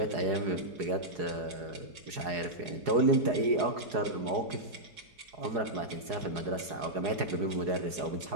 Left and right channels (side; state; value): left; late; 4.8 ms